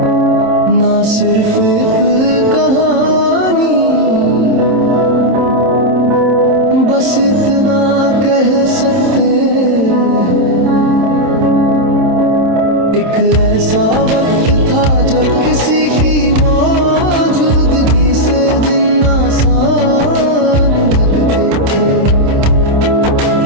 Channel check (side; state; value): left; late; 27 ms